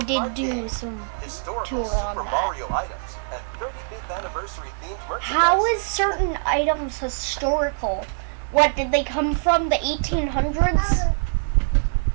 Kart do game. some Historical tour on Super that. Mario items and 35th anniversary themed merchandise. How is certain items historical? What, did they come from the 1800s? Well,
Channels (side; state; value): left; silent; 58 dB below the other